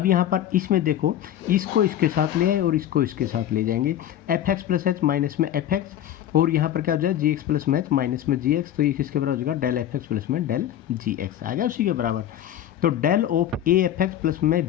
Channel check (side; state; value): right; quieter; 11.2 dB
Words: यहाँ पर इसमें देखो, इसको इसके साथ ले आए और इसको इसके साथ ले जाएंगे, f x plus h minus में एफ एक्स, और यहाँ पर क्या हो जाए जी एक्स प्लस में एच माइनस में जी एक्स, तो ये किसके बराबर हो जाएगा, डेल एफ एक्स प्लस में डेल जी एक्स आ गया उसी के बराबर। तो del of a f x plus में